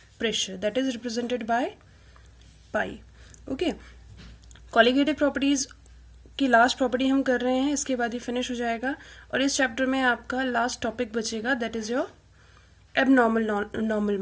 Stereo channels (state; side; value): identical; both; correlation 1.00